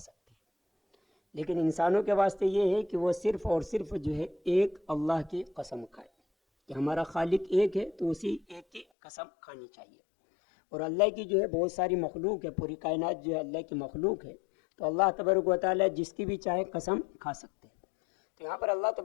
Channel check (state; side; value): drops out; right; at 8.8 s